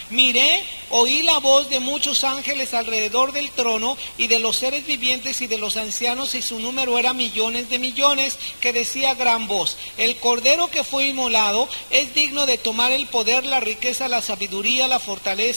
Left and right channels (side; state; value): both; inverted; correlation -1.00